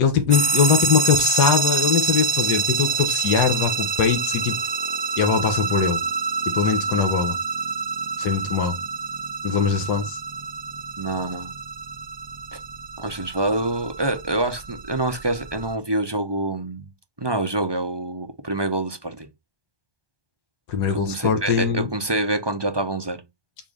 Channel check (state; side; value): late; left; 1.2 ms